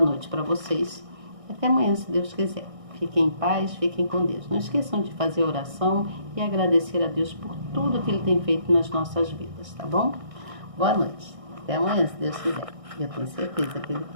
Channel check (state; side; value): late; left; 1.6 ms